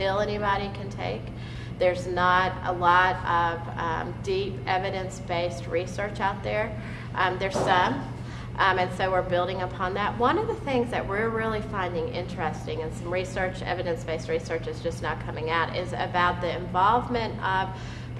anybody can take. There's not a lot of deep evidence-based research out there. There's some. And so we're building upon that. One of the things that we're really finding interesting, and some research, evidence-based research is just now coming out, is about the involvement of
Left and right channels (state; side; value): identical; both; correlation 1.00